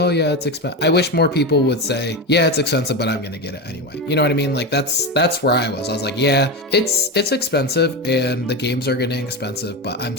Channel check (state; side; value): normal; both; correlation 0.18